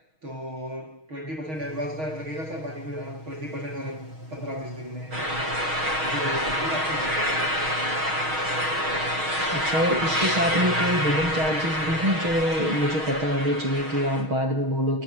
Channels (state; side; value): late; left; 6.4 ms